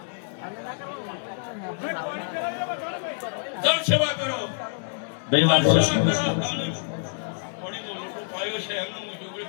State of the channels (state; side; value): silent; right; digital silence